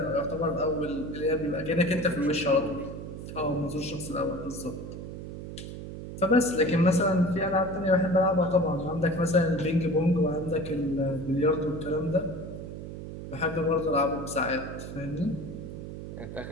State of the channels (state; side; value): noise; right; hum, 9 dB below the sound